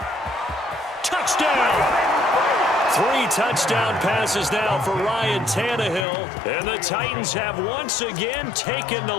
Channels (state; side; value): drops out; right; at 6.1 s